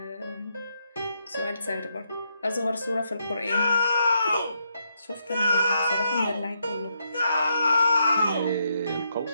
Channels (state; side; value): inverted; both; correlation -0.79